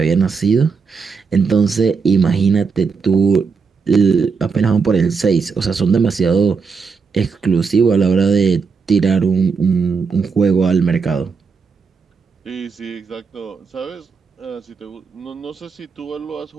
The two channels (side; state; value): left; quieter; 5.3 dB